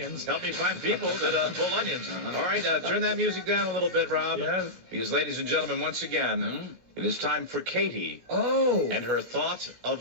Help me find people that pull onions. All right, turn that music down a little bit, Rob. Yes. Because, ladies and gentlemen, once again, it is time for Katie and her thought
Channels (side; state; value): left; late; 17 ms